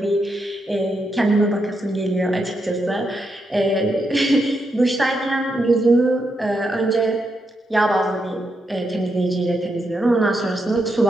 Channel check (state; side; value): normal; both; correlation 0.82